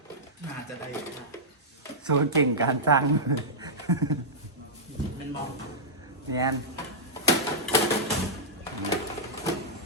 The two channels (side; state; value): both; normal; correlation -0.11